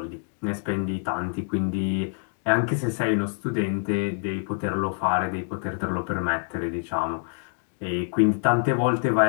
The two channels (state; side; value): silent; right; digital silence